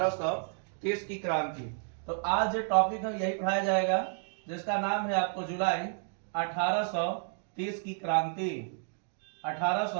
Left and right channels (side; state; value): left; silent; 57 dB below the other